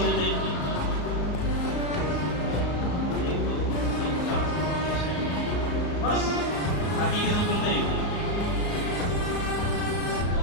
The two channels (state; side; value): late; right; 34 ms